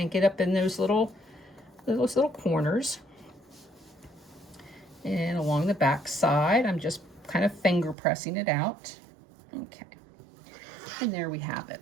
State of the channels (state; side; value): drops out; left; at 8.0 s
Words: and get up in those little corners. And along the back side, I'm just kind of finger pressing it out. Okay, and there we have it.